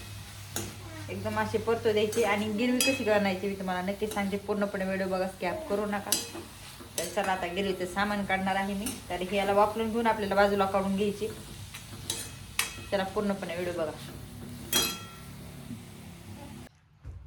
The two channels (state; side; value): identical; both; correlation 1.00